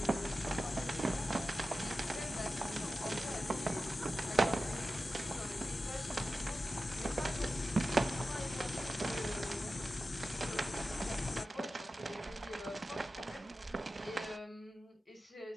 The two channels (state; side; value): normal; both; correlation 0.93